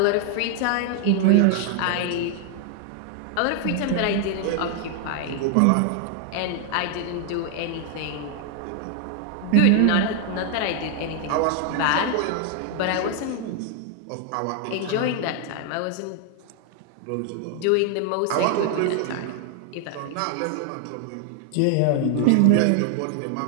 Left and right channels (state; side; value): different; both; correlation 0.00